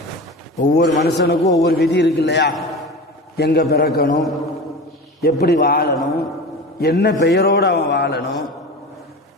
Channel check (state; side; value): normal; both; correlation 0.31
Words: ஒவ்வொரு மனுஷனுக்கும் ஒவ்வொரு விதி இருக்கு இல்லையா? எங்கே பிறக்கணும், எப்படி வாழணும், என்ன பெயரோடு அவன் வாழணும்,